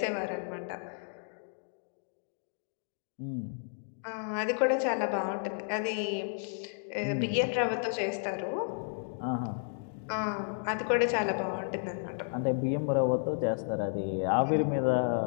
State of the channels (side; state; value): right; silent; digital silence